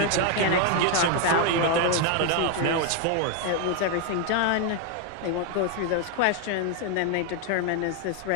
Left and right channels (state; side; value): different; both; correlation 0.01